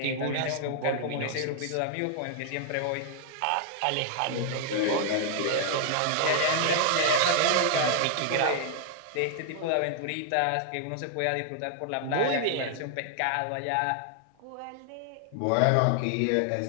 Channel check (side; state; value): both; different; correlation 0.00